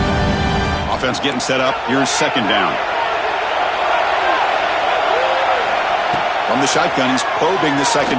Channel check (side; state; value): both; identical; correlation 1.00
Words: Offense getting set up. Here's second down. From the shotgun, he's probing the